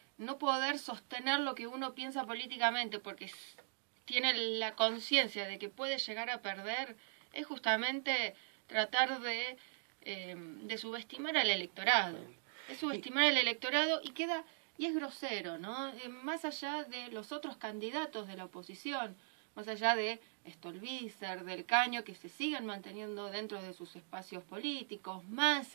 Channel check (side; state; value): left; silent; digital silence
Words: no poder sostener lo que uno piensa políticamente porque tiene la conciencia de que puede llegar a perder, es justamente tratar de subestimar al electorado. Es subestimar al electorado y es grosero, ¿no? Más allá de los otros candidatos de la oposición, más allá de Stolbizer, del Caño, que se siguen manteniendo dentro de sus espacios políticos,